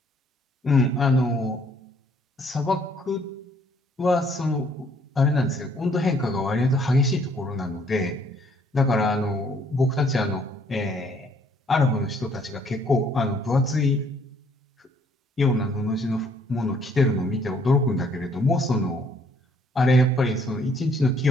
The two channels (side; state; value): both; normal; correlation 0.64